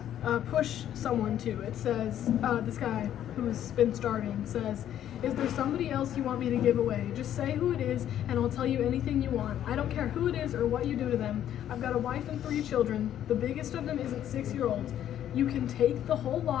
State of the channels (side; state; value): right; quieter; 10.9 dB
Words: push someone to. It says, this guy who's been starving says, "Is there somebody else you want me to give away? Just say who it is, and I'll tell you anything you want. I don't care who it is or what you do to them. I've got a wife and 3 children. The biggest of them isn't 6-year-olds. You can take the whole